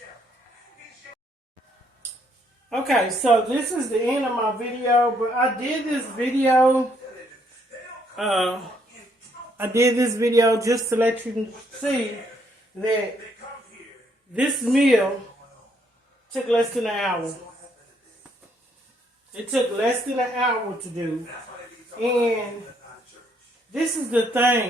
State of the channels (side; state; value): both; normal; correlation 0.70